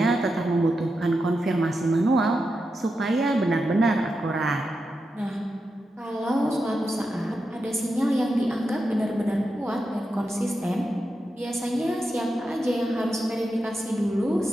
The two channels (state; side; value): normal; both; correlation 0.88